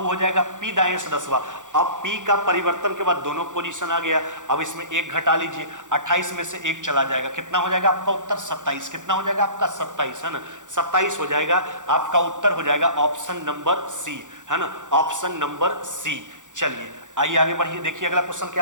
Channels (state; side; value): late; left; 0.86 ms